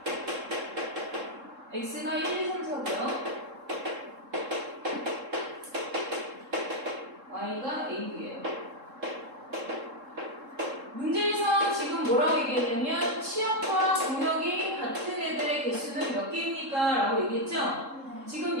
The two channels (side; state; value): left; late; 3.7 ms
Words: X가 1, 2, 3, 4고요. Y가 A, B예요. 문제에서 지금 뭐라고 얘기했냐면 치역과 공역이 같은 애들의 개수는 몇 개입니까? 라고 얘기했죠?